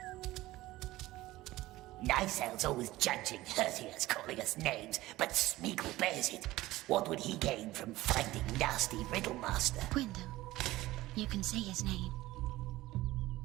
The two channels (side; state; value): left; quieter; 17.4 dB